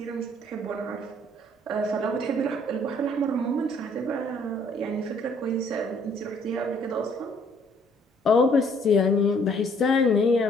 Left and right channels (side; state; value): both; normal; correlation 0.62